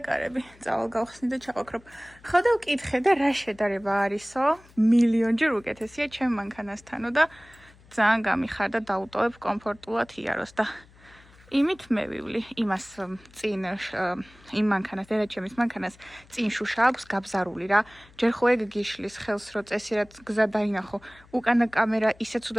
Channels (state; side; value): noise; left; hum, 26 dB below the sound